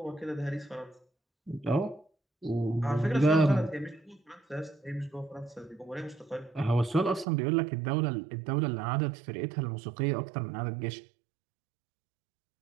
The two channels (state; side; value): drops out; left; at 7.2 s